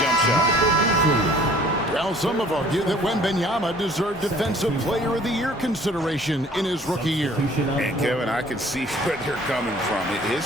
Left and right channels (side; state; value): both; normal; correlation 0.54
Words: jump shot. Well, some have argued that Wembanyama deserved Defensive Player of the Year consideration in his rookie year. And Kevin, I can see where they're coming from.